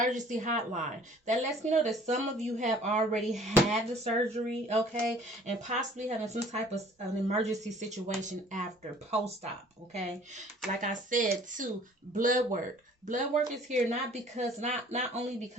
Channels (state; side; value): normal; both; correlation 0.53